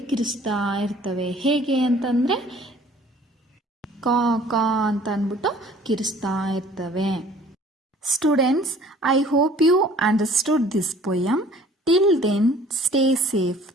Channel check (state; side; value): normal; both; correlation 0.52